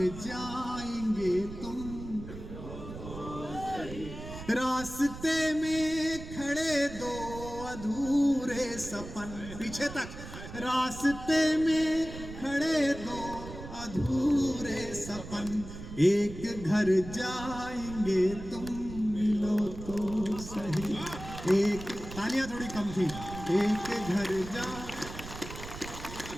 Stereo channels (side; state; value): right; noise; rumble, 11 dB below the sound